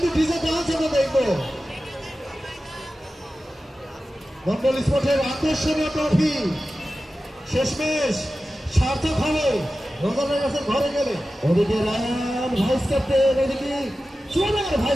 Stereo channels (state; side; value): normal; both; correlation 0.94